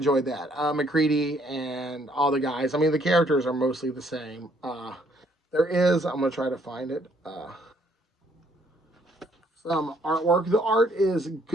that. McCready and all the guys. I mean, the characters are mostly the same. There is, I'm going to try to find it, some artwork. The art is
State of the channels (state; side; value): normal; both; correlation 0.67